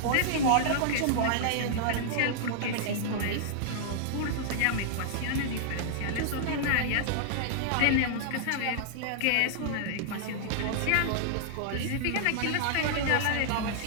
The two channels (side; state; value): both; different; correlation -0.01